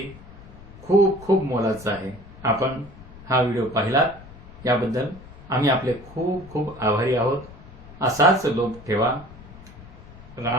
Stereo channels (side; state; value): left; noise; rumble, 18 dB below the sound